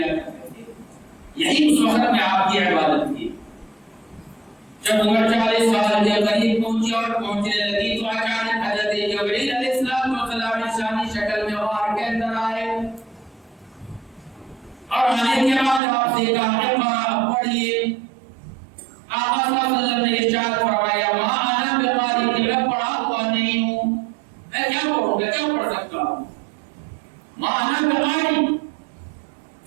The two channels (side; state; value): left; drops out; at 15.8 s